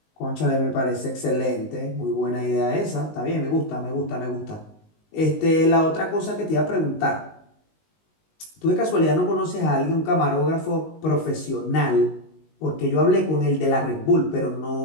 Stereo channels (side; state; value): right; late; 19 ms